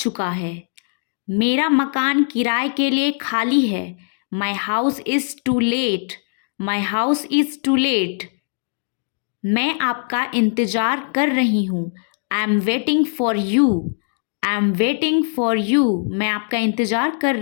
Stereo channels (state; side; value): silent; right; 64 dB below the other